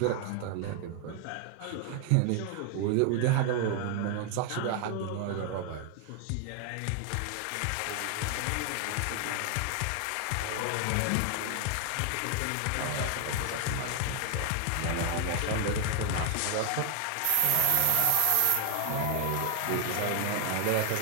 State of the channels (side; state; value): both; different; correlation 0.00